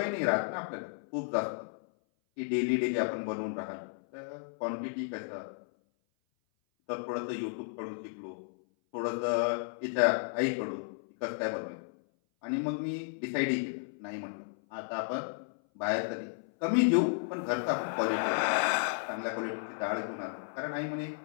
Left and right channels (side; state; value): right; silent; 56 dB below the other